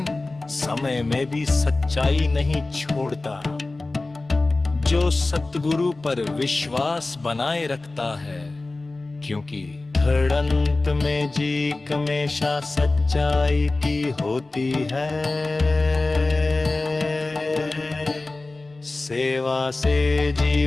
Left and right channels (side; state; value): right; quieter; 3.2 dB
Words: समय में भी सच्चाई नहीं छोड़ता, जो सतगुरु पर विश्वास बनाए रखता है, क्योंकि धड़ंत में जीक हमेशा सच्चाई की होती है। सेवा से